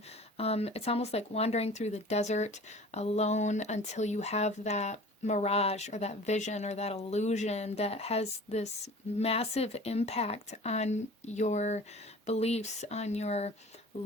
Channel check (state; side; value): normal; both; correlation 0.43